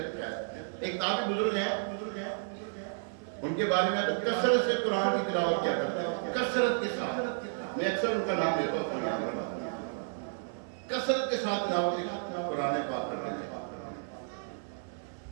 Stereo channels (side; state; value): left; silent; 56 dB below the other